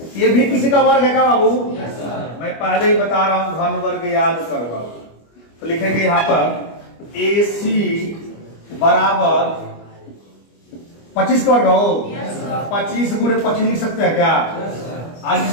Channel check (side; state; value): right; late; 25 ms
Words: ये भी किसी का वर्ग है क्या बाबू, मैं पहले ही बता रहा हूं घन वर्ग याद करो बाबू। तो लिखेंगे यहां पर AC बराबर 25 का वर्ग हो, 25 गुणे 25 लिख सकते हैं क्या। आज